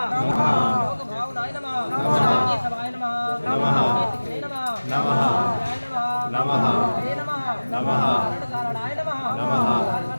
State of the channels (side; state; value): both; inverted; correlation -1.00